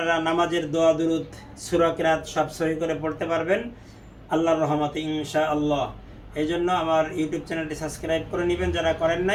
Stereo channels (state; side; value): identical; both; correlation 1.00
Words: নামাজের দোয়া দুরুদ সূরা কিরাত সব সহি করে পড়তে পারবেন আল্লাহর রহমতে ইনশাআল্লাহ। এই জন্য আমার ইউটিউব চ্যানেলটি সাবস্ক্রাইব করে নেবেন যারা করেন